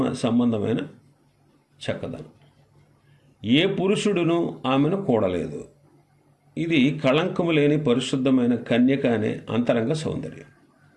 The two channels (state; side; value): identical; both; correlation 1.00